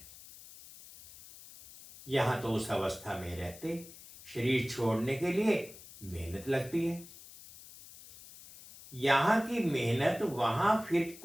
यहां तो उस अवस्था में रहते शरीर छोड़ने के लिए मेहनत लगती है। यहां की मेहनत वहां फिर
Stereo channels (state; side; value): noise; left; hiss, 18 dB below the sound